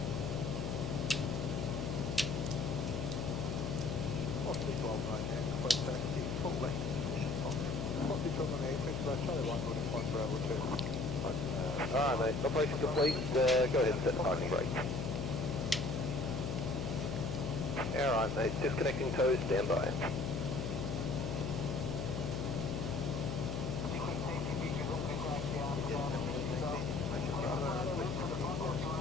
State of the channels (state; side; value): noise; left; hum, 2 dB below the sound